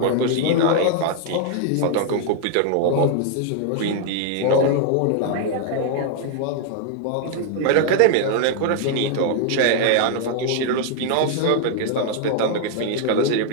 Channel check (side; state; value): both; different; correlation 0.00